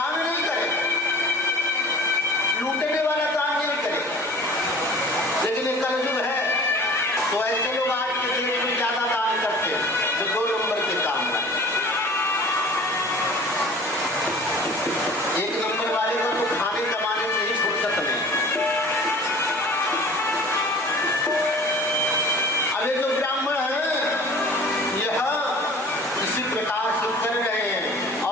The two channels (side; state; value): both; normal; correlation 0.45